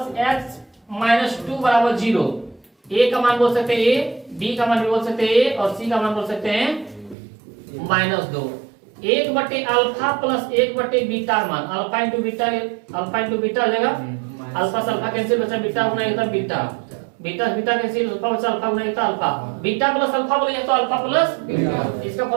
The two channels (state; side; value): drops out; left; at 7.2 s